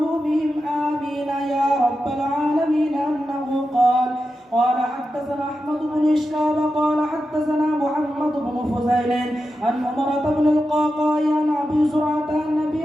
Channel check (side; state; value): both; normal; correlation 0.90